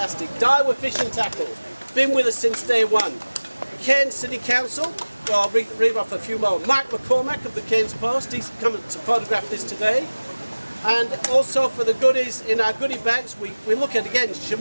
Daiwa Fishing Tackle, been with us since day one. Cairns City Council, well, I'll read off a few more. Mike McCormack of the Cairns Post, he's coming to photograph this today. And also for the goodies in our goodie bags, we look at, again,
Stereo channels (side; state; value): both; inverted; correlation -1.00